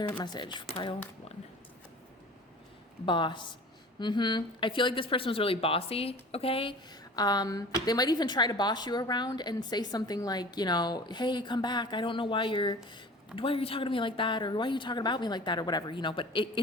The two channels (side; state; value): both; normal; correlation 0.41